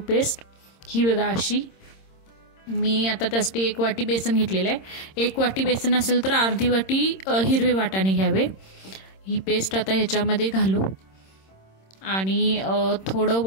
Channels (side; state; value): right; late; 26 ms